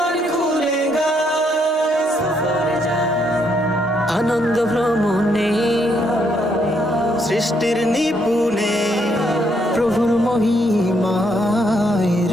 খুলে গায়। সফরে যাই, আনন্দ ভ্রমণে সৃষ্টির নিপুণে প্রভুর মহিমায়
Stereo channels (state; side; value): normal; both; correlation 0.73